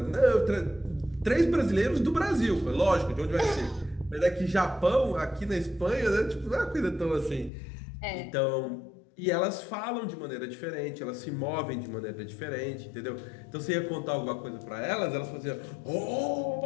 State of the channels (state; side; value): drops out; right; at 7.5 s